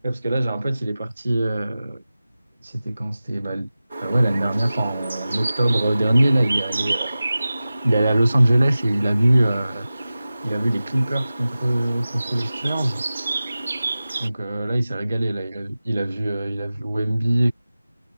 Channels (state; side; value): inverted; both; correlation -0.96